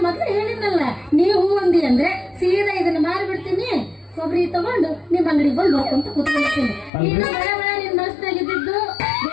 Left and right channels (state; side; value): drops out; right; at 6.9 s